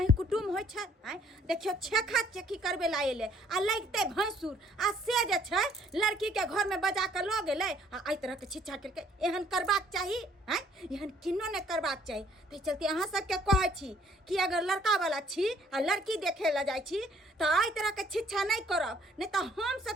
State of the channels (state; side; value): normal; both; correlation 0.62